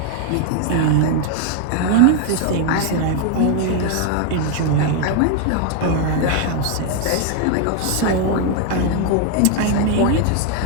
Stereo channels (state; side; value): different; both; correlation 0.00